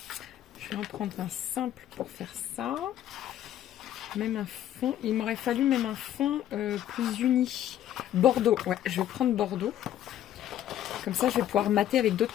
Je vais en prendre un simple pour faire ça. Même un fond. Il m'aurait fallu même un fond plus uni. Bordeaux. Ouais, je vais prendre Bordeaux. Comme ça, je vais pouvoir mater avec d'autres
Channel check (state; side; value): quieter; right; 11.7 dB